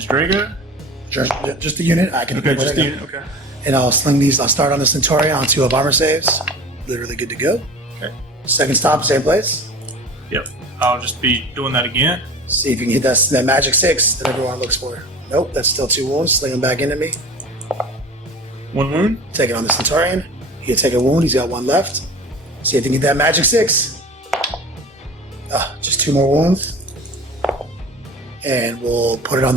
Drago. Just the unit. I can Okay, just the unit, okay. And I'll sling these. I'll start on the Centaurion on 2 of armor saves. Literally good to go. Okay. Second stop, same place. Yep. I'll just be doing that again. See if you can hit that magic 6 that everyone looks for. Nope, that's still 2 wounds. Sling them back into me. 1 wound. Take it on the Centaurion. He can take a wound. He's got 1 left. See if you can get that magic 6. Just 2 more wounds. And we'll put it on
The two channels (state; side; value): normal; both; correlation 0.37